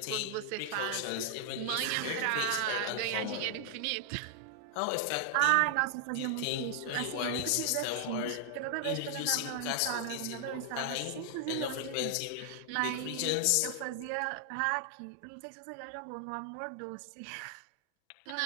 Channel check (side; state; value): both; different; correlation 0.00